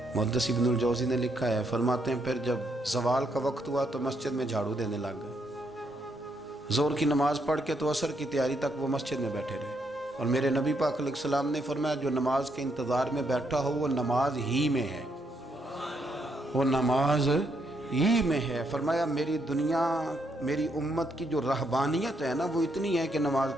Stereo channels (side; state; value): both; normal; correlation 0.76